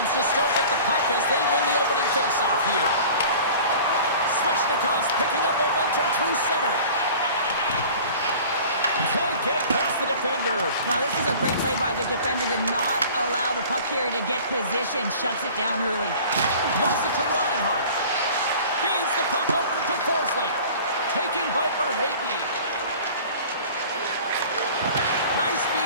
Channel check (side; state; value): both; inverted; correlation -0.43